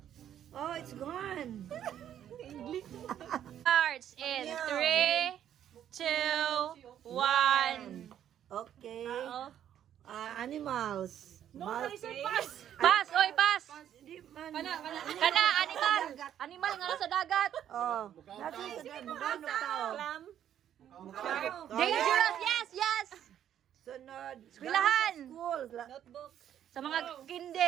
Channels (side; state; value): left; quieter; 10.3 dB